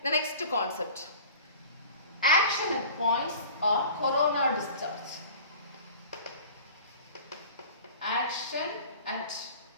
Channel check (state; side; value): inverted; both; correlation -0.41